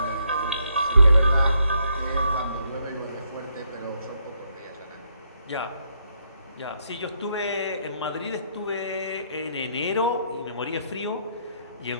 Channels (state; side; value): inverted; both; correlation -0.75